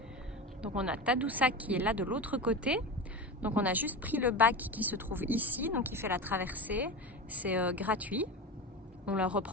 Donc on a Tadoussac qui est là de l'autre côté. Donc on a juste pris le bac qui se trouve ici, donc il fait la traversée. C'est gratuit. On le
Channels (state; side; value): normal; both; correlation 0.25